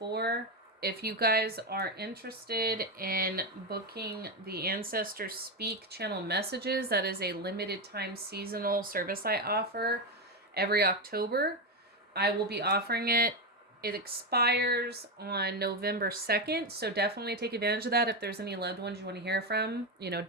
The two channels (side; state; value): both; normal; correlation 0.11